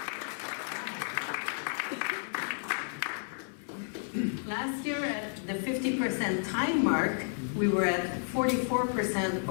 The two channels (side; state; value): right; silent; 57 dB below the other